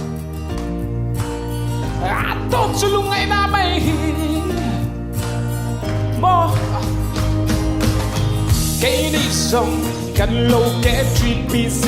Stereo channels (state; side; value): identical; both; correlation 1.00